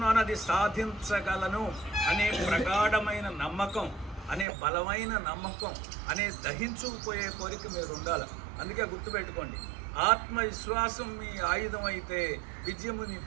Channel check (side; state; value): left; drops out; at 4.5 s